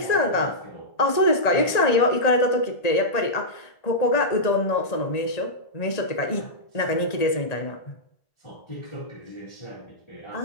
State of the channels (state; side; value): late; right; 1.8 ms